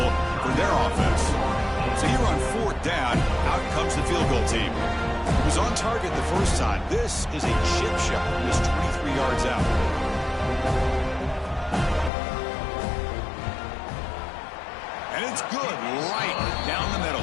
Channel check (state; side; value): drops out; right; at 12.1 s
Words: for their offense. So here on 4th down, out comes the field goal team. He was on target the first time. This is a chip shot. He was 23 yards out. And it's good right down the